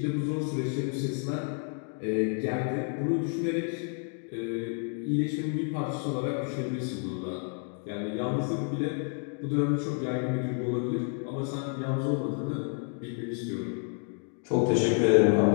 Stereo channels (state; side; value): quieter; right; 39.9 dB